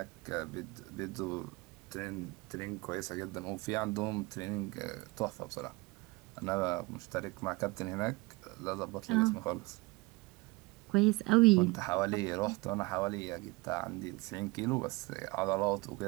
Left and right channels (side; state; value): left; quieter; 23.5 dB